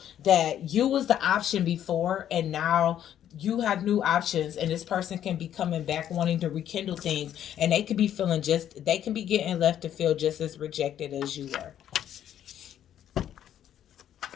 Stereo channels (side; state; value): right; quieter; 10.5 dB